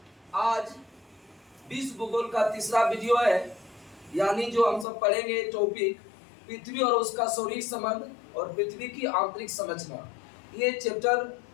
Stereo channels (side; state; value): right; drops out; at 4.9 s